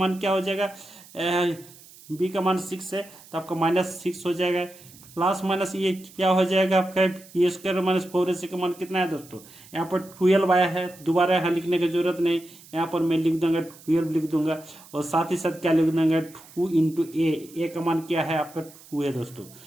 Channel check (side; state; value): right; noise; hiss, 22 dB below the sound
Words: क्या हो जाएगा, b का मान 6 है तो आपका -6 हो जाएगा, प्लस माइनस ये क्या हो जाएगा आपका ए स्क्वायर माइनस 4ac का मान कितना है दोस्तों, यहाँ पर 12 आया है, दोबारा यहाँ लिखने की जरूरत नहीं, यहाँ पर मैं लिख दूंगा 12 लिख दूंगा, और साथ ही साथ क्या लिख दूंगा 2 इंटू ए का मान क्या है आपका 2 है दोस्तों।